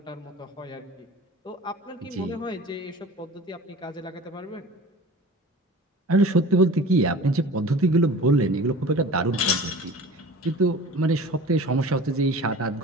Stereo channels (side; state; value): both; normal; correlation 0.40